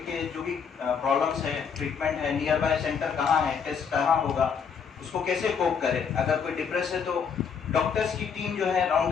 के जो भी प्रॉब्लम्स है, ट्रीटमेंट है, नियर बाय सेंटर कहाँ है, टेस्ट कहाँ होगा, उसको कैसे कोप करे. अगर कोई डिप्रेस है तो डॉक्टर्स की टीम जो है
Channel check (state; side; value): quieter; right; 6.5 dB